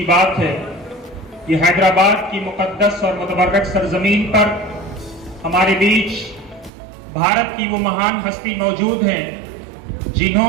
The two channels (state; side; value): drops out; left; at 6.7 s